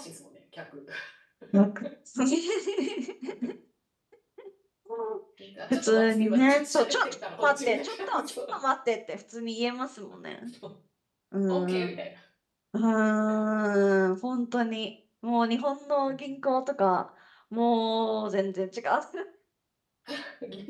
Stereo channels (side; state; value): both; identical; correlation 1.00